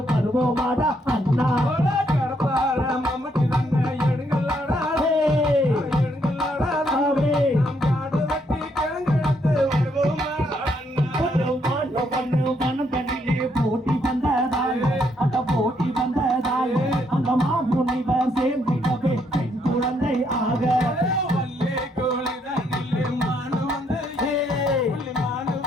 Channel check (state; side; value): normal; both; correlation 0.73